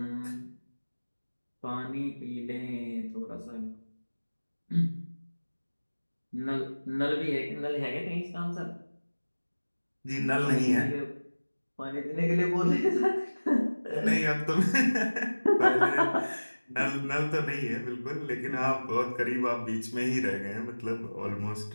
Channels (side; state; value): both; inverted; correlation -1.00